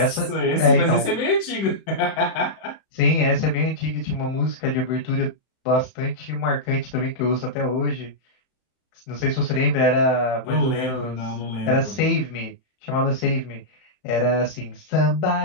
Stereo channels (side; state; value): right; late; 31 ms